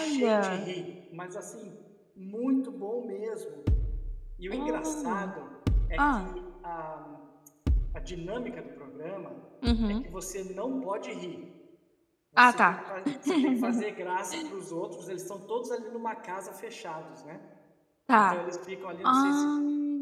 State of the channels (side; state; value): both; identical; correlation 1.00